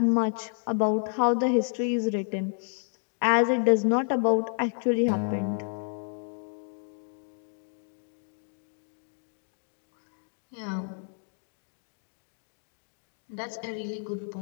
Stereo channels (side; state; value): right; silent; 58 dB below the other